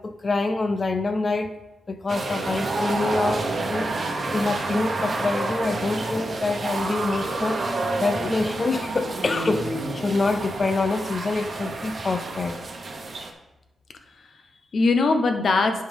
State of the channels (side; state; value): both; normal; correlation 0.88